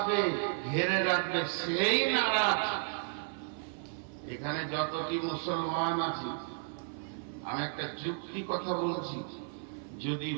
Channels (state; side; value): silent; left; 56 dB below the other